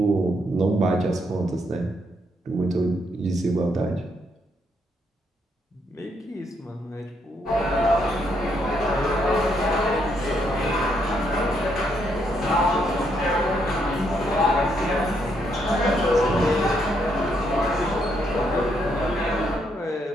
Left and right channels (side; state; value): both; normal; correlation 0.75